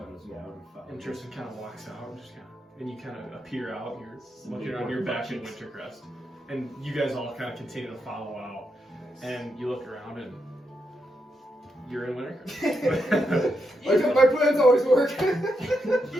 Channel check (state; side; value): normal; both; correlation 0.83